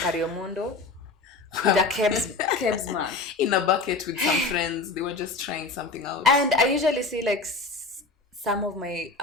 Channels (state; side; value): quieter; right; 3.9 dB